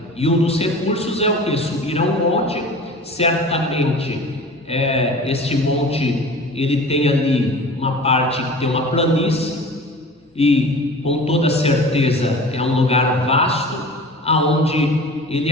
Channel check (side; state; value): both; normal; correlation 0.39